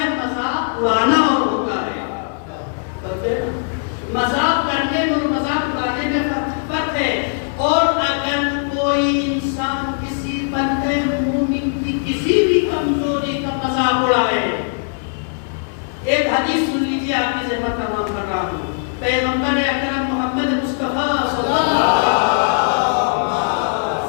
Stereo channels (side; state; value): right; silent; digital silence